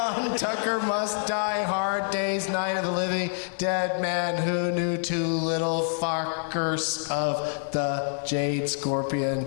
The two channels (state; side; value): silent; right; 56 dB below the other